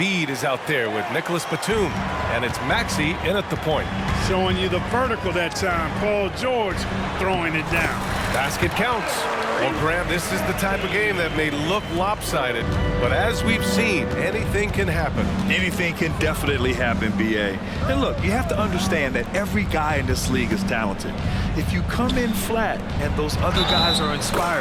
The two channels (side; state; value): both; identical; correlation 1.00